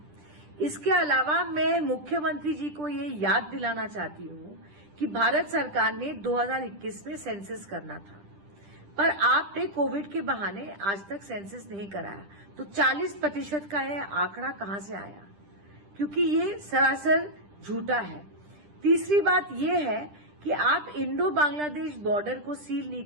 इसके अलावा मैं मुख्यमंत्री जी को ये याद दिलाना चाहती हूं कि भारत सरकार ने 2021 में सेंसस करना था, पर आपने कोविड के बहाने आज तक सेंसस नहीं कराया, तो 40% का यह आंकड़ा कहां से आया? क्योंकि ये सरासर झूठा है। तीसरी बात यह है कि आप इंडो बांग्लादेश बॉर्डर को सील नहीं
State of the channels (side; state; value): left; late; 10 ms